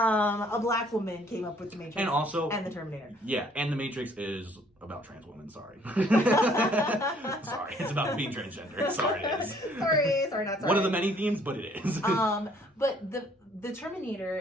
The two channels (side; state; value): both; normal; correlation 0.61